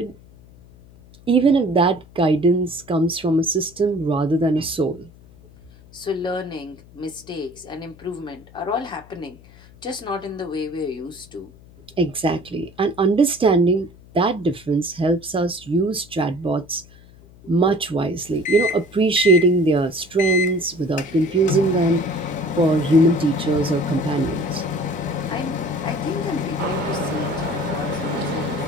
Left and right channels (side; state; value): left; noise; hum, 23 dB below the sound